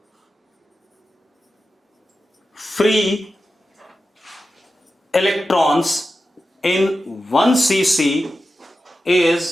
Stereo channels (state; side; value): normal; both; correlation 0.92